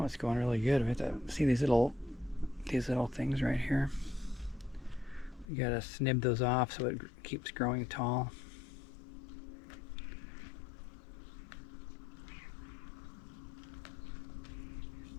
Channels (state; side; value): drops out; right; at 5.5 s